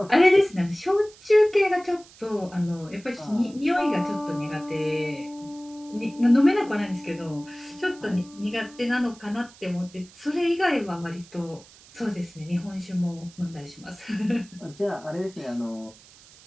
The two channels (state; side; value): noise; right; hiss, 23 dB below the sound